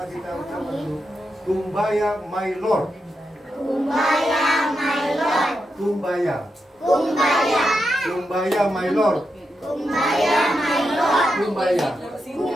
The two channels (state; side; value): normal; both; correlation 0.86